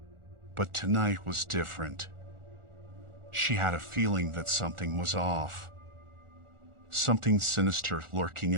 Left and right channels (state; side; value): late; left; 1.4 ms